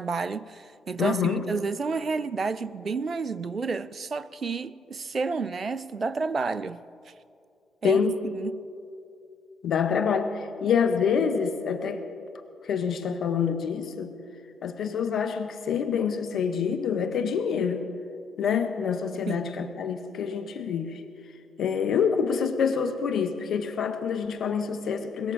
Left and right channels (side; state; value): right; quieter; 4.0 dB